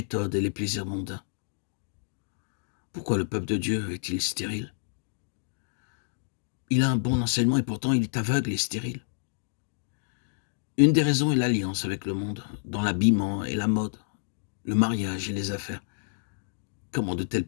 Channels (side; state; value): right; silent; digital silence